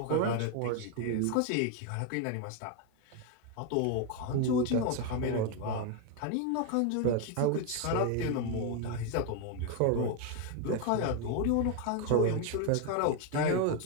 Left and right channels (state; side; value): different; both; correlation 0.01